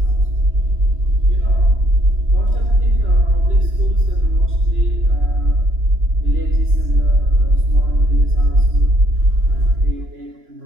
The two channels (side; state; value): left; late; 2.9 ms